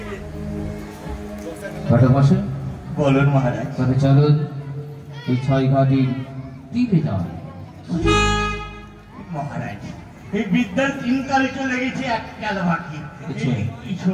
বলুন মহারাজ। তবে চলুন এই ছয় ঘাটির তীরে যান। মহারাজ, এই বিদ্যার তিনকালে চলে গেছে, এক কাল বাকি। এই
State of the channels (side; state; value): both; identical; correlation 1.00